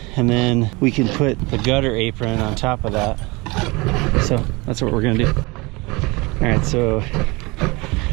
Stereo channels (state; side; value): quieter; left; 25.0 dB